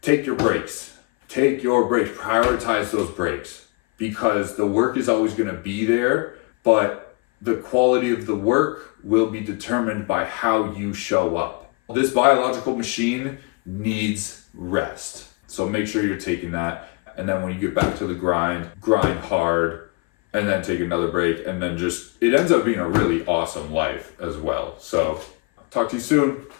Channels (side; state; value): right; quieter; 30.5 dB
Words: Take your breaks. Prioritize those breaks, because the work is always going to be there, but the quality of the work will be determined by how you show up. This biological machine needs rest. So make sure you're taking that. And then when you get back to the grind hard, and then take another break, and then it ends up being a really awesome life as well. So talk to you soon.